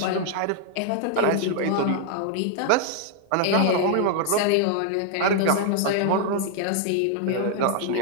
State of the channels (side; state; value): both; different; correlation -0.01